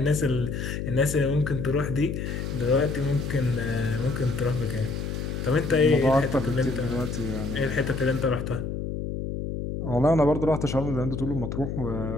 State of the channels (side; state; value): left; noise; hum, 4 dB below the sound